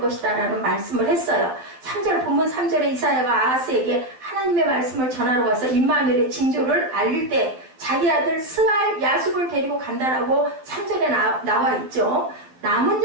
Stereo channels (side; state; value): left; late; 12 ms